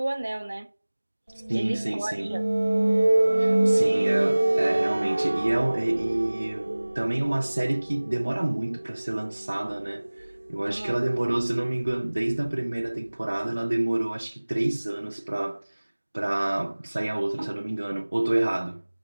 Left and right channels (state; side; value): inverted; both; correlation -1.00